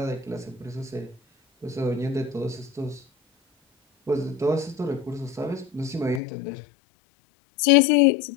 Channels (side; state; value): right; drops out; at 6.2 s